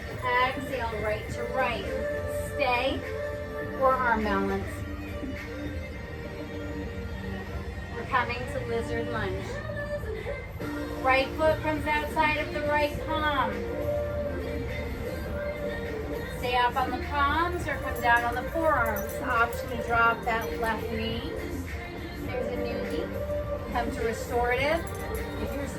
Exhale, right to right. Stay or arm balance. We're coming to lizard lunge. Right foot comes outside of the right palm. Stay up on the palms or come down on the forearms. Option to drop that left knee. There's a newbie. Come to restorative. If you're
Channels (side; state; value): both; identical; correlation 1.00